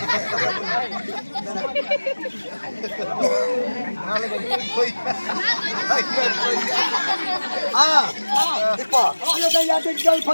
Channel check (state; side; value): inverted; both; correlation -1.00